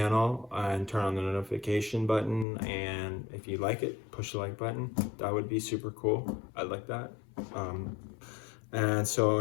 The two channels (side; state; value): right; drops out; at 2.5 s